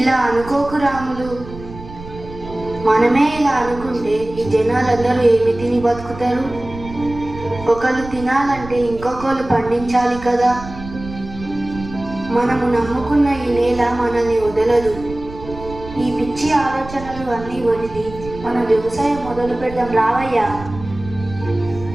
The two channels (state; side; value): noise; right; rumble, 14 dB below the sound